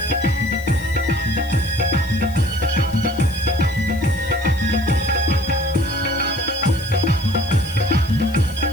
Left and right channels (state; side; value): noise; left; hiss, 20 dB below the sound